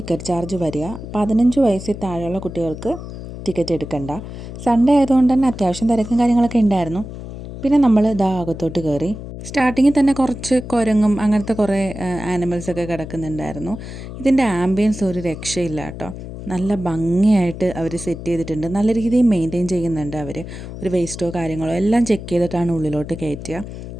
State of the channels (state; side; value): noise; left; hum, 11 dB below the sound